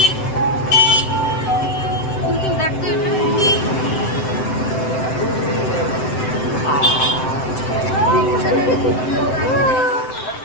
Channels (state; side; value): late; right; 7.8 ms